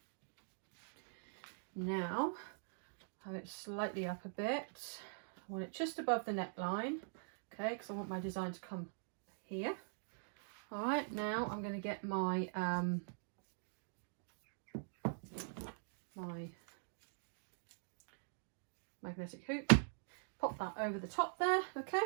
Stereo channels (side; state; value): left; silent; digital silence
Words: now have it slightly up a bit. I want it just above the neckline, okay, because I want my design to come here. All right, now I'm going to get my my magnetic hoop, pop that over the top there, okay,